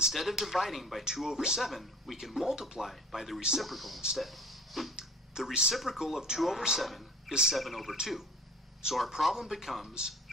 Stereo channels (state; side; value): normal; both; correlation 0.45